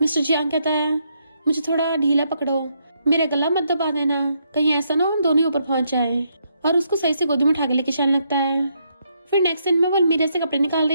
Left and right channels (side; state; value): both; inverted; correlation -0.77